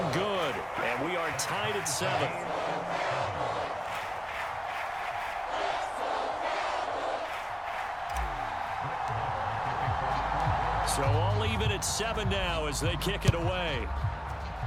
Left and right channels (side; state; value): both; identical; correlation 1.00